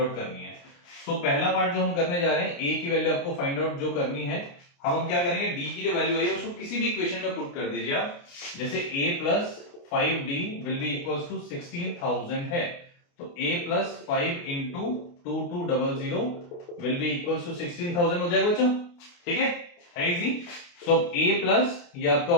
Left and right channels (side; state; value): right; late; 29 ms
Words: करनी है। तो पहला पार्ट जो हम करने जा रहे हैं, A की वैल्यू आपको फाइंड आउट जो करनी है, हम क्या करेंगे, D की जो वैल्यू आई है उसको किसी भी इक्वेशन में पुट कर दीजिए आप। जैसे A plus 5D will be equals to 16,000 है, तो A plus 5 into 2200 will be equals to 16,000 हो जाएगा बच्चों, ठीक है इजी। सो A प्लस ये आपका